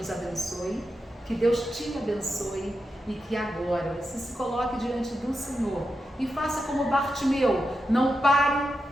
abençoe, que Deus te abençoe e que agora você se coloque diante do Senhor e faça como Bartimeu, não pare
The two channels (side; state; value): both; normal; correlation 0.88